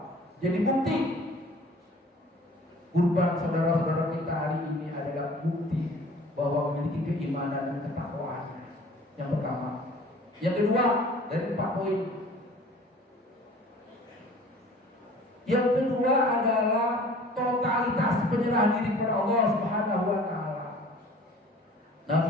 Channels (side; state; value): both; normal; correlation 0.48